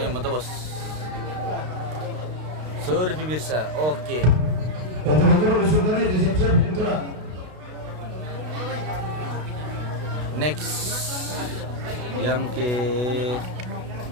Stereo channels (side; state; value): left; late; 32 ms